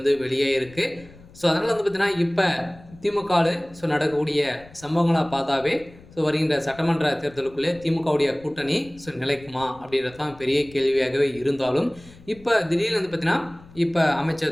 வெளியாகிருக்கு. அதனால் பார்த்தீங்கன்னா இப்போ திமுகவில் நடக்கக்கூடிய நடக்கக்கூடிய பார்த்தாவே வருகின்ற சட்டமன்ற தேர்தலுக்குள்ளே திமுகவுடைய கூட்டணி நிலைக்குமா அப்படின்றது தான் பெரிய கேள்வியாகவே இருந்தாலும், இப்போ திடீர்னு பார்த்தீங்கன்னா இப்போ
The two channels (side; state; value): left; noise; rumble, 22 dB below the sound